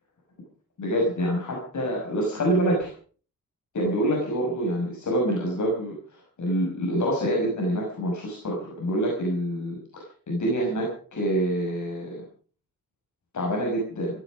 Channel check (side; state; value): both; normal; correlation 0.21